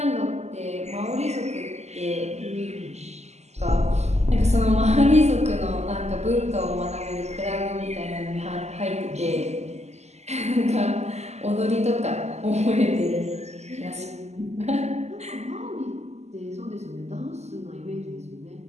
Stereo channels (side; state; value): left; late; 0.32 ms